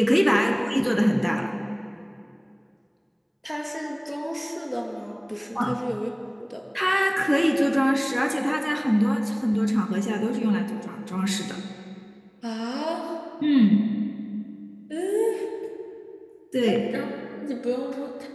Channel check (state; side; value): identical; both; correlation 1.00